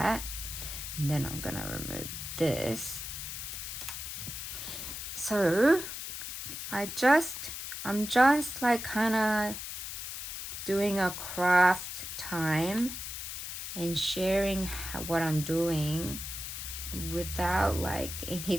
and then I'm gonna remove this. So I'm just like kind of doing a craft time and sharing what I'm doing without like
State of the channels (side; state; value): left; noise; hiss, 7 dB below the sound